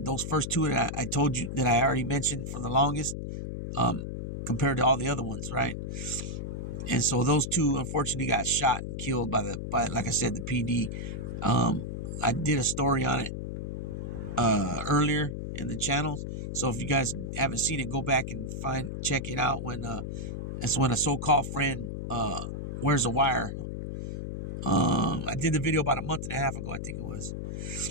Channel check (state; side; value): noise; left; hum, 5 dB below the sound